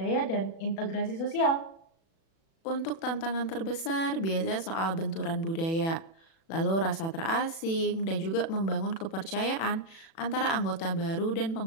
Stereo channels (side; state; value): right; late; 36 ms